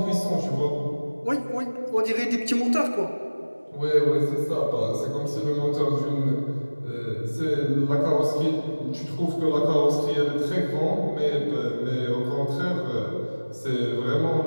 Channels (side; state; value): both; inverted; correlation -1.00